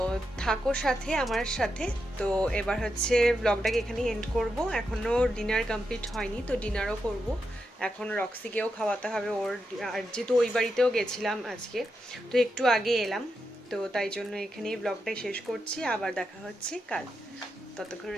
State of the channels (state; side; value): normal; both; correlation 0.86